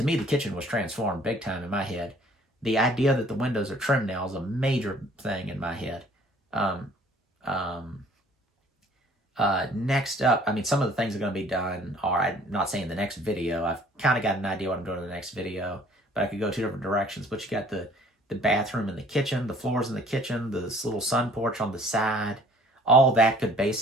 me, the kitchen was transformed big time in my head. The idea that the windows are trimmed now is a major thing in my head. Next up, I mean, some of the things that are going to be done are, I'm not saying the next video. I've kind of got an idea what I'm doing in the next video, but I could go two different directions. But you got the bathroom and the kitchen, the floors in the kitchen, this little sun porch on the side. All that could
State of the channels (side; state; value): both; normal; correlation 0.55